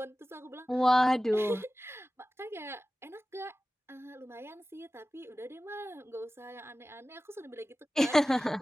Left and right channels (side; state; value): both; normal; correlation 0.96